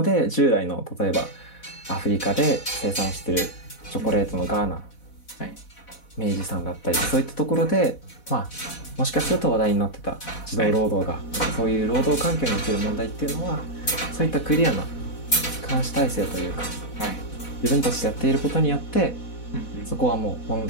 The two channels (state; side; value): late; right; 4.1 ms